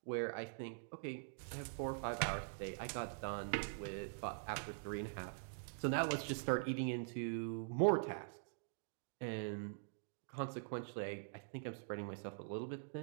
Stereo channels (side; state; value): left; silent; digital silence